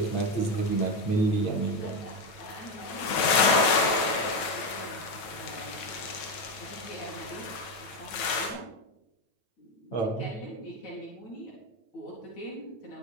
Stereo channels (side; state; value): right; late; 9.0 ms